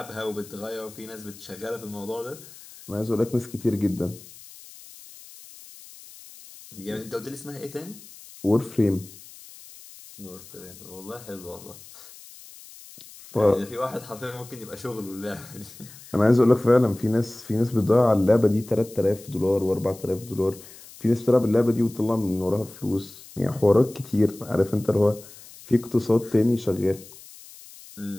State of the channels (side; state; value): left; noise; hiss, 19 dB below the sound